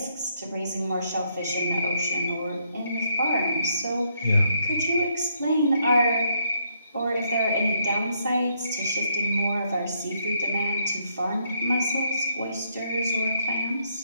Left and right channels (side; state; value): both; inverted; correlation -0.73